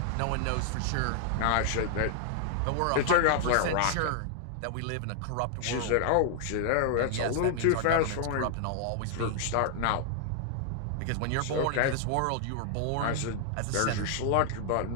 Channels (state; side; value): different; both; correlation 0.00